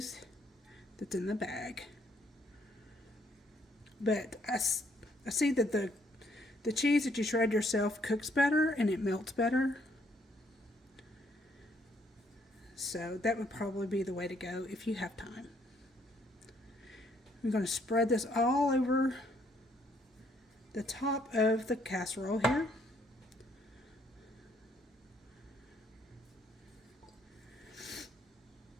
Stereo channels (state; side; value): normal; both; correlation 0.68